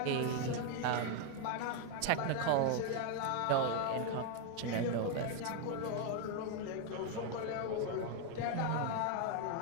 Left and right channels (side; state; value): both; different; correlation 0.00